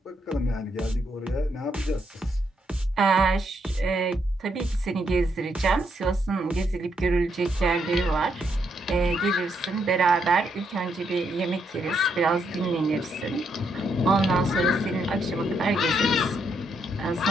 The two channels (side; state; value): both; normal; correlation 0.77